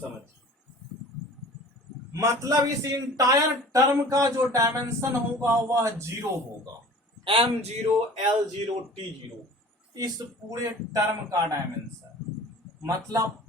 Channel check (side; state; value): both; normal; correlation 0.43